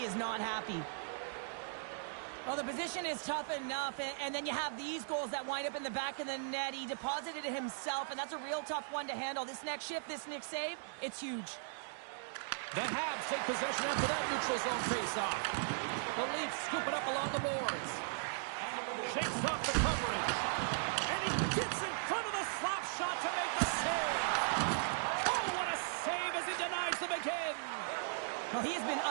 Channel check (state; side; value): silent; left; digital silence